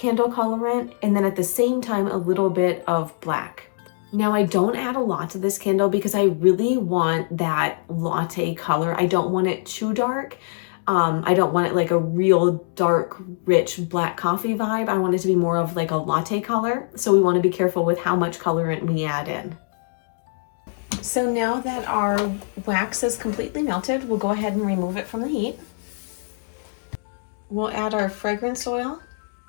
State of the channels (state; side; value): silent; right; digital silence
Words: colorant and then at the same time a little bit of black. Now I don't add a lot to this candle because I really want that latte color. I don't want it too dark. I don't want it like a real dark, rich black coffee vibe. I want it to be more of like a latte color. So we want to be careful with how much colorant we add in. So now that our wax is completely melted, we'll go ahead and remove it from the heat. We'll add our fragrance oil.